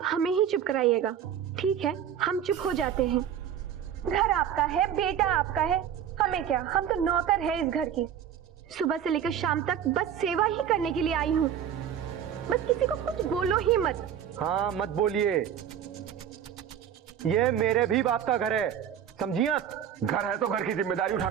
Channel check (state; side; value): quieter; left; 9.2 dB